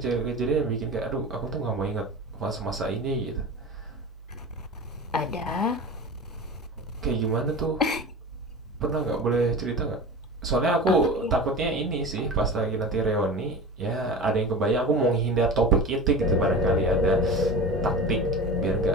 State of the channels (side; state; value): both; normal; correlation 0.31